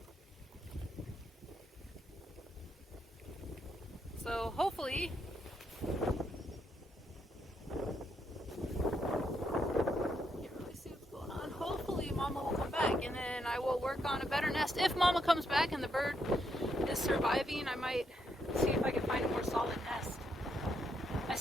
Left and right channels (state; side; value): normal; both; correlation 0.78